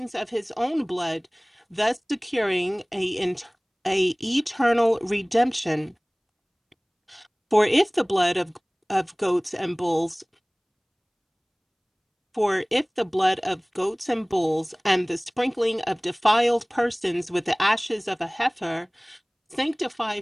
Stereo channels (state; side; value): identical; both; correlation 1.00